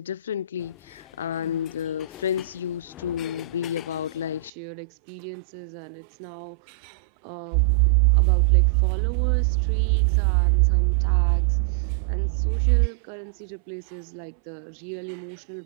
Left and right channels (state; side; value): drops out; left; at 4.5 s